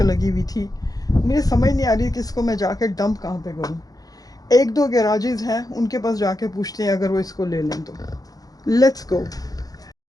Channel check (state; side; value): late; right; 0.18 ms